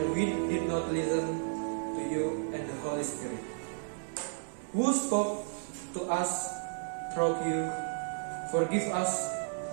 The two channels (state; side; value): silent; left; 56 dB below the other